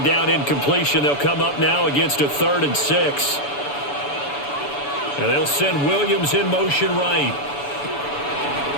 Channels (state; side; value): late; right; 7.0 ms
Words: down incompletion, they'll come up now against a 3rd and 6. And they'll send Williams in motion right.